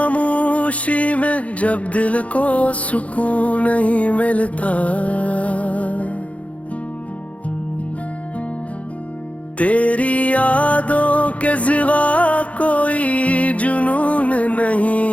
में जब दिल को सुकून नहीं मिलता, तेरी यादों के सिवा कोई जुनून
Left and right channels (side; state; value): right; late; 0.065 ms